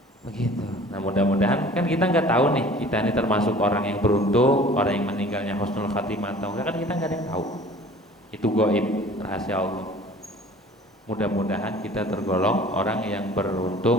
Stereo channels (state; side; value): normal; both; correlation 0.47